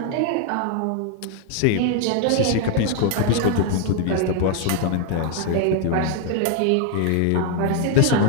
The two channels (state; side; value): different; both; correlation 0.00